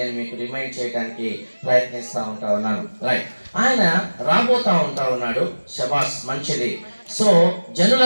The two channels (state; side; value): inverted; both; correlation -1.00